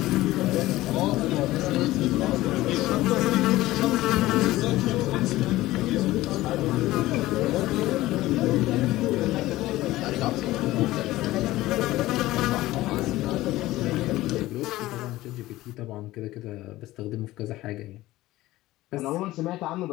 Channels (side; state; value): right; quieter; 17.0 dB